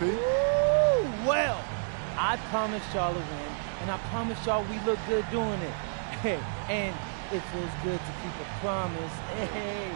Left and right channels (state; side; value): silent; left; digital silence